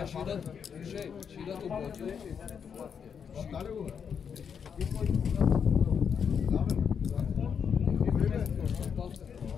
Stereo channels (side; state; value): right; quieter; 7.0 dB